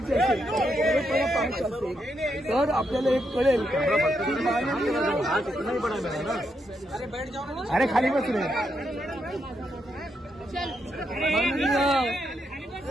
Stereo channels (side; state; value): both; normal; correlation 0.80